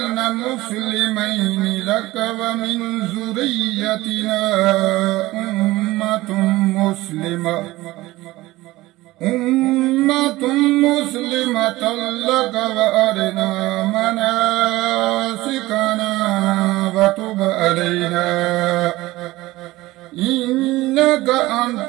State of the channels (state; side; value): quieter; left; 18.5 dB